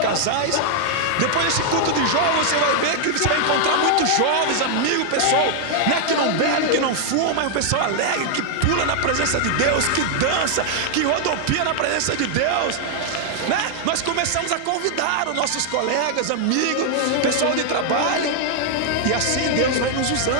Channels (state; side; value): different; both; correlation 0.00